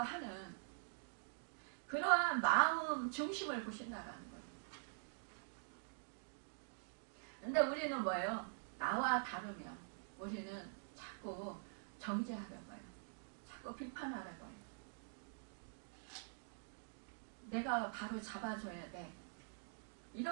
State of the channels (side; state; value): left; silent; digital silence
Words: 하는 그러한 마음 중심을 보신다라는 거예요. 근데 우리는 뭐예요? 나와 다르면 우리는 자꾸 정죄하려고 해요. 자꾸 비판하려고 해요. 내가 바로 잡아줘야 돼.